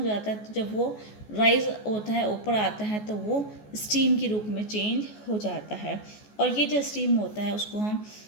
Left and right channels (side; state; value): right; late; 14 ms